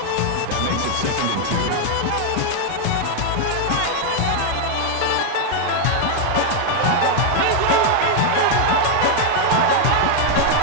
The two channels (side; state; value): both; different; correlation 0.00